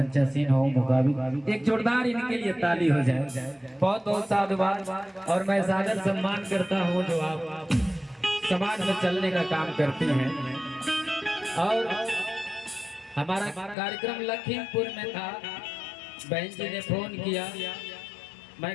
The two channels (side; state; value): right; drops out; at 13.8 s